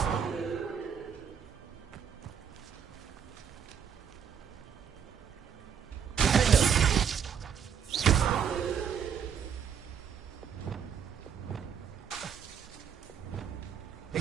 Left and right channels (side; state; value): left; quieter; 7.8 dB